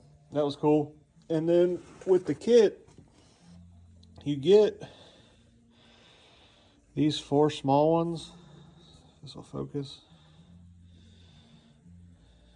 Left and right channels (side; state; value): both; identical; correlation 1.00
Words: that was cool. And then with the kit, you get these 4 small ones. This will focus.